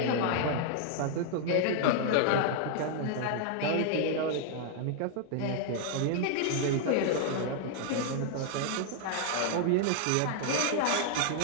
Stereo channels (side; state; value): both; different; correlation 0.00